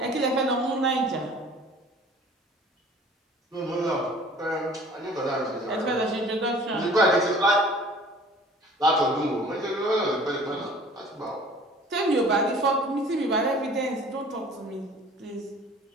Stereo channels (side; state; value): both; normal; correlation 0.49